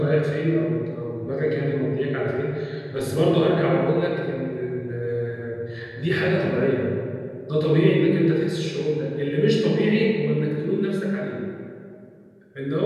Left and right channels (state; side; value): identical; both; correlation 1.00